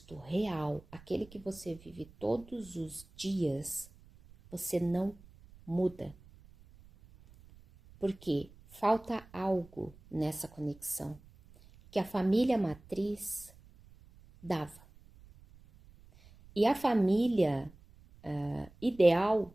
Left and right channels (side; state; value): right; noise; rumble, 24 dB below the sound